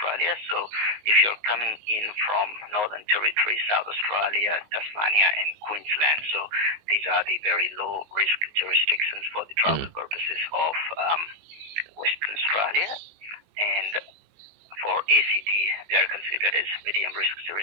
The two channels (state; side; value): late; left; 19 ms